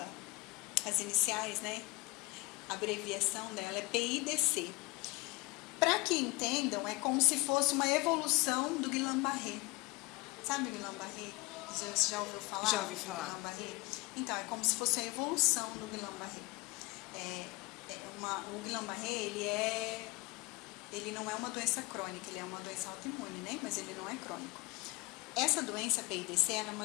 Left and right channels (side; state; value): right; quieter; 24.1 dB